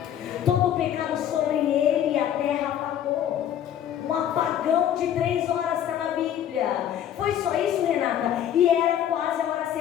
Todo o pecado sobre ele e a terra apagou. Um apagão de 3 horas está na Bíblia. Foi só isso, Renata? E era quase a hora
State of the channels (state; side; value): quieter; right; 10.3 dB